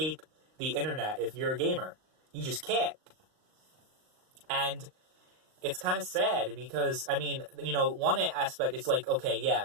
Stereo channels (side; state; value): left; late; 38 ms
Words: the internet if you're a gamer. You just can't. And it's kind of sad because, I mean, one aspect, it's like, okay, yeah,